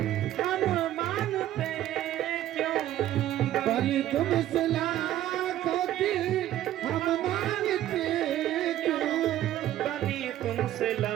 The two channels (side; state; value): left; quieter; 13.1 dB